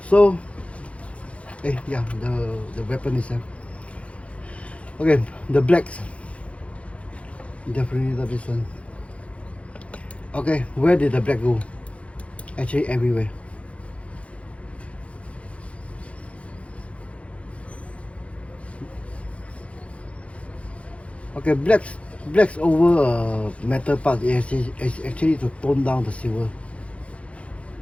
So, yeah, the weapon itself. Okay, the blacks. Definitely not this one. Okay, where did the black go? Actually, everywhere. Okay, blacks over metal part is actually to tone down the silver.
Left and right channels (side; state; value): right; late; 0.063 ms